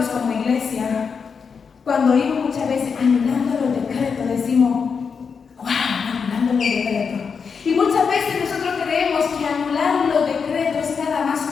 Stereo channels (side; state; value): right; quieter; 5.9 dB